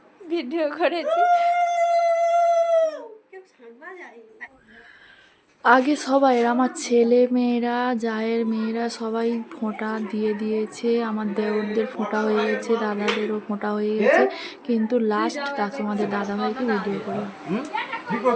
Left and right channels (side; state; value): both; identical; correlation 1.00